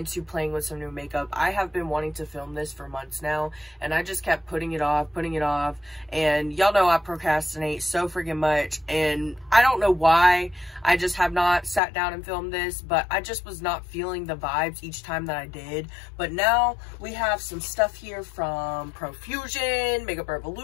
playing with some new makeup. I have been wanting to film this for months now, and I just kept putting it off, and y'all know I procrastinate so freaking much, and I don't know why. I just have not sat down and filmed this, but I just was not feeling the vibes each time that I did. But now we have some stuff here from Profusion, Makeup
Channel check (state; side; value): drops out; right; at 11.8 s